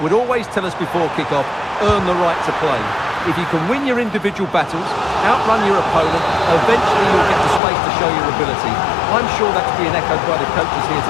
would always tell us before kick-off, earn the right to play. If you can win your individual battles, outrun your opponent, eventually you'll get the space to show your ability. I'm sure that's being echoed by the coaches here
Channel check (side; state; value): right; drops out; at 7.6 s